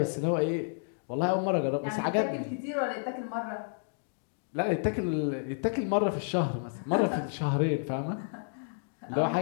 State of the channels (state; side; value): silent; right; digital silence